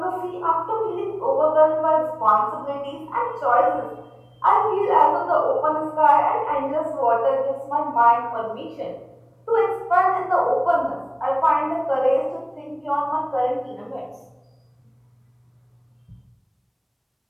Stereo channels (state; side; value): identical; both; correlation 1.00